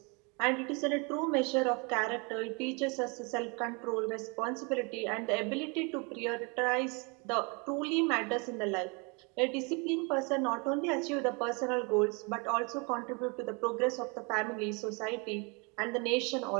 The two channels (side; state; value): left; quieter; 31.9 dB